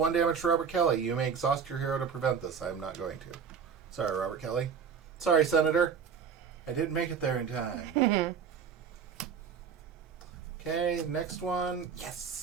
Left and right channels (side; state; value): left; quieter; 6.9 dB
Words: damage to Robert Kelly. You may exhaust your hero to prevent this. I am not going to. Sorry, Robert Kelly. Sorry, Senator. I didn't make it there in time. Okay, next one.